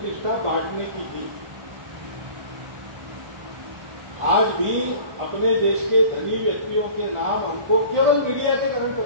बांटने की थी। आज भी अपने देश के धनी व्यक्तियों के नाम हमको केवल मीडिया के कारण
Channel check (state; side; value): late; left; 1.5 ms